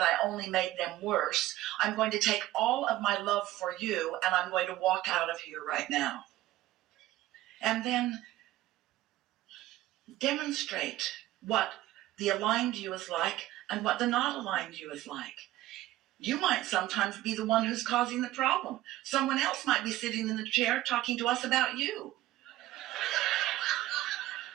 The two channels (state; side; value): quieter; left; 15.6 dB